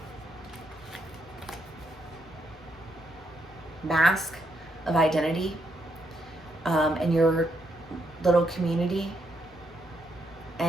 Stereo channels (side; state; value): both; normal; correlation 0.78